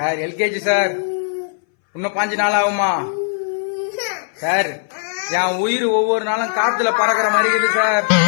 LKG sir. இன்னும் 5 நாள் ஆகுமா சார்? என் உயிர் ஒவ்வொரு நாளும் காத்துல பறக்கிற மாதிரி இருக்குது சார்.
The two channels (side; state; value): right; silent; 62 dB below the other